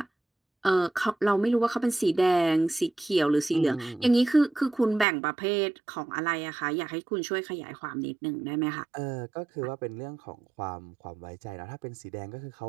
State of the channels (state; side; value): drops out; left; at 5.1 s